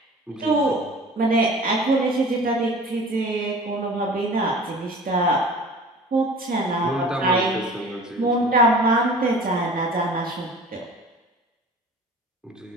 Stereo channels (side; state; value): both; normal; correlation 0.42